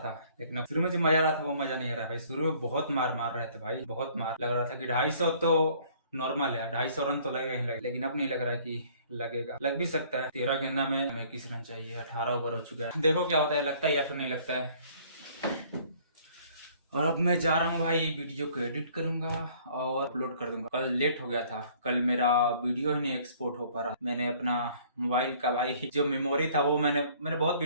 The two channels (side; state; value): both; inverted; correlation -0.57